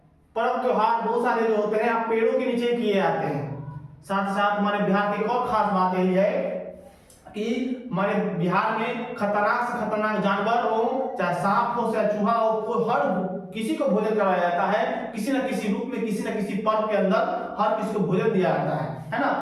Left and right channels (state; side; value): identical; both; correlation 1.00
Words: पर्व त्योहार बहुत सारे जो होते हैं आप पेड़ों के नीचे किए जाते हैं। साथ साथ हमारे बिहार की एक और खास बात यही है कि हमारे बिहार में खतरनाक से खतरनाक जानवर हो, चाहे सांप हो, चाहे चूहा हो, कोई हर किसी को भोजन कराया जाता है, किसी न किसी रूप में, किसी न किसी पर्व के अंदर हर किसी को भोजन दिया जाता है